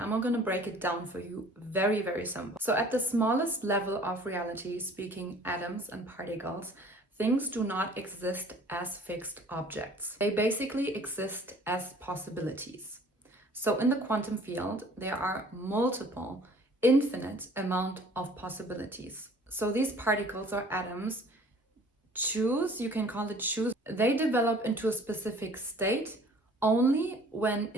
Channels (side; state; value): both; normal; correlation 0.52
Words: going to break it down for you very simple. So at the smallest level of reality, speaking atoms and particles, things do not exist as fixed objects. They basically exist as possibilities. So in the quantum field, there are multiple, infinite amount of possibilities. So these particles or atoms you can call it choose. They develop into a specific state only when